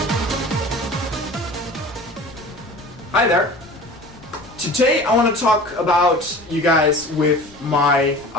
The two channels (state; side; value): noise; left; rumble, 23 dB below the sound